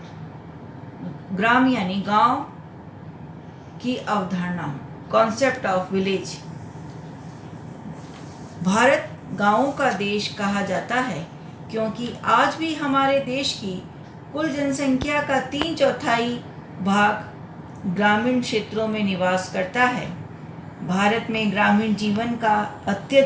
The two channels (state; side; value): identical; both; correlation 1.00